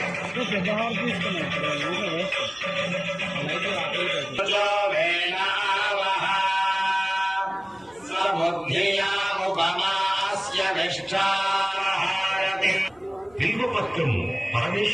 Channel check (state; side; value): noise; right; hum, 30 dB below the sound